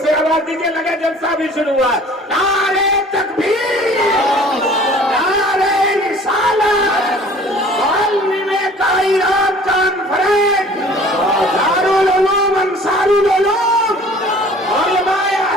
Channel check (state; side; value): normal; both; correlation 0.49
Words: آواز دیجیے, لگے جلسہ بھی شروع ہوا. نعرہ تکبیر, نعرہ رسالت, معلم کائنات کانفرنس, دارالعلوم انصار العلوم, علماء